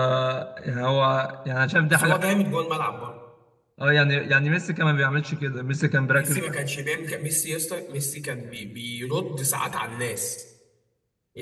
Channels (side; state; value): both; identical; correlation 1.00